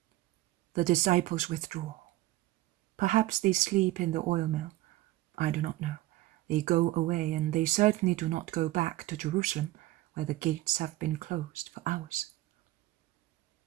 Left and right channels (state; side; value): quieter; left; 17.2 dB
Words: The disciples withdraw. Perhaps they sleep in the oil mill. I do not know. They go away, and they certainly do not go back to Jerusalem, where the gates have been closed for hours.